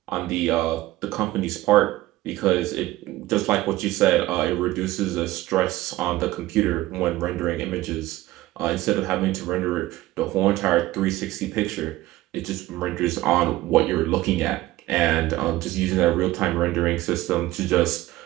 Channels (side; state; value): left; quieter; 16.9 dB